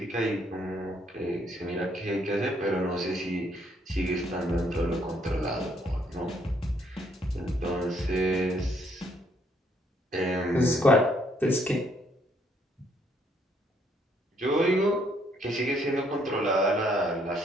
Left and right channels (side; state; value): both; normal; correlation 0.69